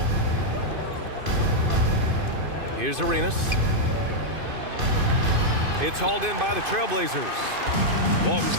Here's Arenas. It's hauled in by the Trailblazers. Walton's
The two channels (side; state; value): left; late; 2.5 ms